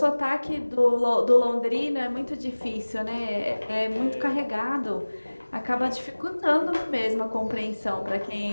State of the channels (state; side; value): inverted; both; correlation -1.00